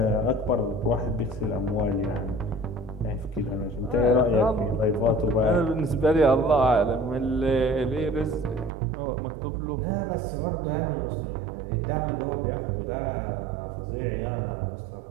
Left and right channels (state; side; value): drops out; left; at 8.7 s